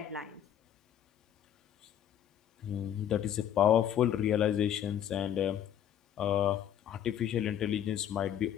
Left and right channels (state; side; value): quieter; right; 10.2 dB